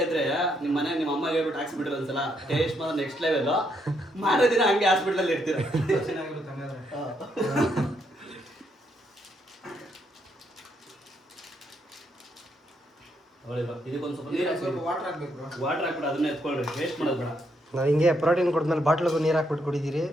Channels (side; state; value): both; normal; correlation 0.76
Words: ಇದ್ರೆ ನಿಮ್ಮ ಮನೆಗೆ ನಿಮ್ಮ ಅಮ್ಮಗೆ ಹೇಳ್ಬಿಟ್ಟು ಹಾಕ್ಸ್ಬಿಟ್ರೆ ಒಂದ್ಸಲ ಟೇಸ್ಟ್ ಮಾತ್ರ ನೆಕ್ಸ್ಟ್ ಲೆವೆಲ್. ಮಾರೋ ದಿನ ಹಂಗೆ ಹಾಸ್ಪಿಟಲ್ ಇರ್ತೀರ. ಚೆನ್ನಾಗಿರುತ್ತೆ ಹಂಗಾದ್ರೆ. ಇದಕ್ಕೊಂದು ಸ್ವಲ್ಪ ನೀರು ಸ್ವಲ್ಪ ವಾಟರ್ ಹಾಕ್ಬೇಕು ಬ್ರೋ. ವಾಟರ್ ಹಾಕ್ಬಿಟ್ಟು ಅದನ್ನ ಎತ್ಕೊಳ್ರಿ, ವೇಸ್ಟ್ ಮಾಡೋದು ಬೇಡ. ನಾವು ಹಿಂಗೆ ಪ್ರೋಟೀನ್ ಕೊಡ್ಮೇಲೆ ಬಾಟ್ಲಿಗೂ ನೀರು ಹಾಕ್ಬಿಟ್ಟು ಕುಡಿದಿರಿ.